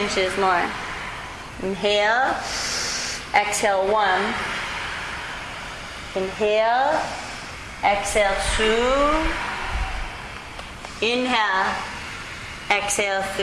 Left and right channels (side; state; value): both; identical; correlation 1.00